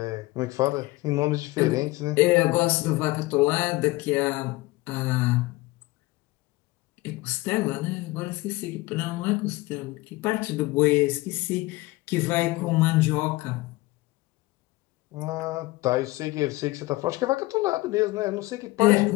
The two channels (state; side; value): quieter; right; 20.4 dB